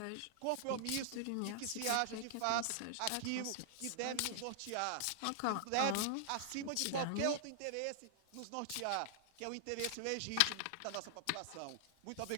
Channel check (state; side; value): different; both; correlation -0.01